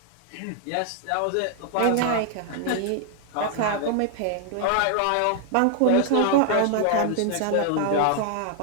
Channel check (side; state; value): both; different; correlation 0.00